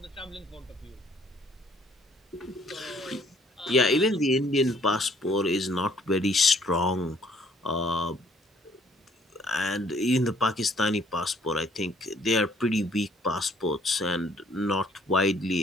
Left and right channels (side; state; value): both; normal; correlation 0.62